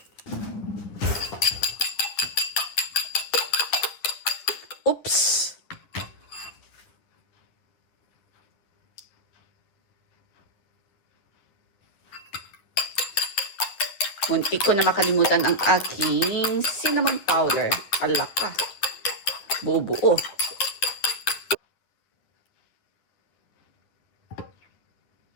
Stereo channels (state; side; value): late; right; 9.9 ms